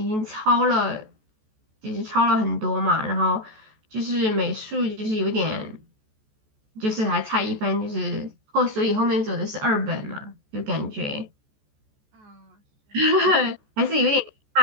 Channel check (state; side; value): late; left; 14 ms